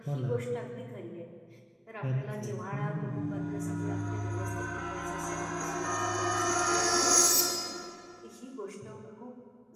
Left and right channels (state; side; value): identical; both; correlation 1.00